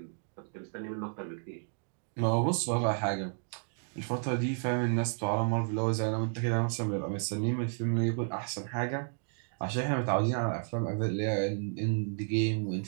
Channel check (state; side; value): silent; left; 56 dB below the other